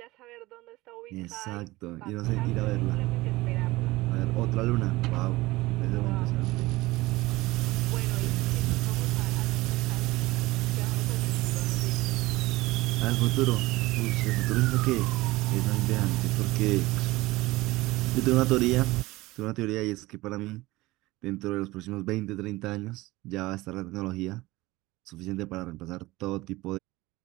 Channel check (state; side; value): quieter; left; 19.7 dB